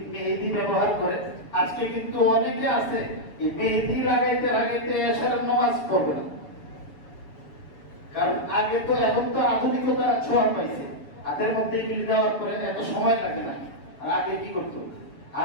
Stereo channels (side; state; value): right; late; 7.0 ms